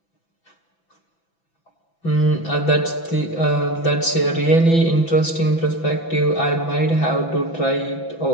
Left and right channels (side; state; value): right; late; 6.0 ms